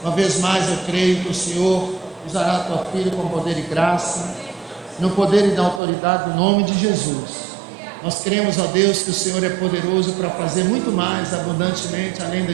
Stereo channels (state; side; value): drops out; left; at 5.8 s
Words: Uma vez mais eu creio que o Senhor usará a tua filha com poder e graça, no poder e na autoridade do nome de Jesus. Nós cremos, ó Deus, que o Senhor é poderoso para fazer muito mais abundantemente, além